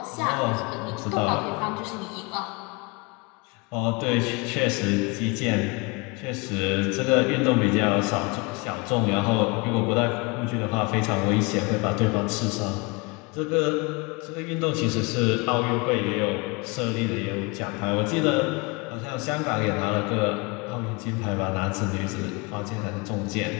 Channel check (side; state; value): right; quieter; 27.9 dB